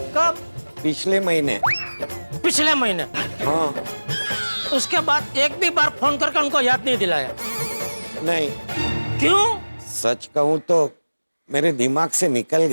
पिछले महीने। पिछले महीने? हाँ। उसके बाद एक भी बार फोन करके उनको याद नहीं दिलाया? नहीं। क्यों? सच कहूँ तो मेरे दिमाग से निकल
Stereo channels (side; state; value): both; inverted; correlation -1.00